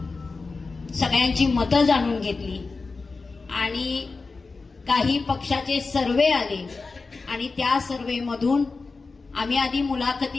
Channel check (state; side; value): quieter; right; 4.1 dB